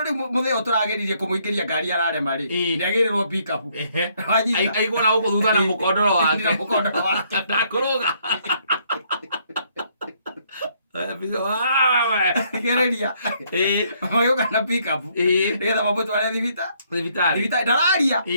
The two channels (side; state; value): both; inverted; correlation -0.68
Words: riu mutheo turageririe kumuingiria ngari ararema ri niagirirwo pick up aigua na guku thutha na mukondoro wake ndakuruga gereria magioka na pick up nigetha mamutware thibitari ndararia